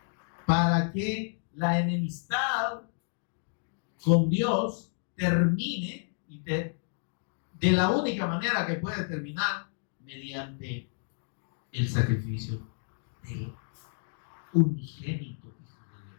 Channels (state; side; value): silent; right; digital silence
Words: Para que la enemistad con Dios termine, y de la única manera que puede terminar, mediante el sacrificio del unigénito Hijo de